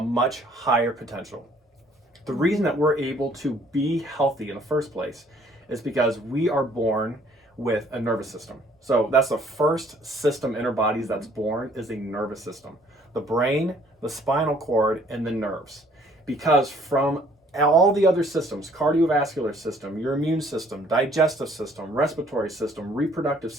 much higher potential. The reason that we're able to be healthy in the first place is because we are born with a nervous system. So that's the first system in our bodies that's born, is a nervous system. The brain, the spinal cord, and the nerves. Because from all the other systems, cardiovascular system, your immune system, digestive system, respiratory system, reproductive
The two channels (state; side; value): normal; both; correlation 0.60